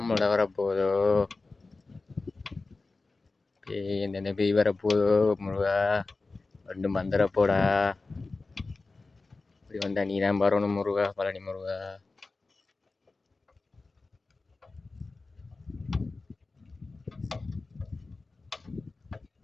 வரப்போதோ, பேய் எந்தெந்த பேய் வரப்போதோ முருகா ரெண்டு மந்திரப்போடா. இப்படி வந்தா நீ தான் வரணும் முருகா, பழனி முருகா.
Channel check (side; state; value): right; quieter; 3.6 dB